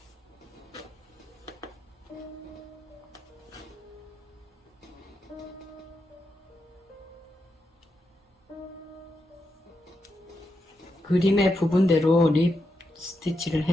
그림의 부분대로 립 스티치를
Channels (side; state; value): both; normal; correlation 0.85